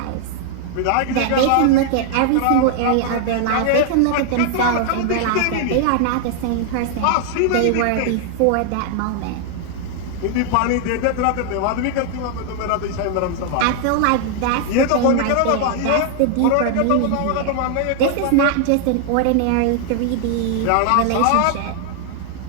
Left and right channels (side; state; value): both; different; correlation 0.00